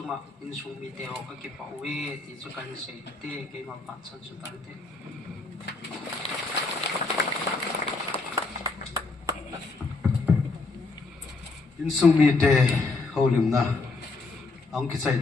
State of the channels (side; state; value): right; quieter; 3.7 dB